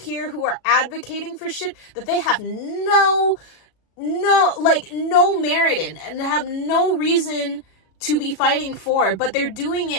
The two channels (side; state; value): right; late; 37 ms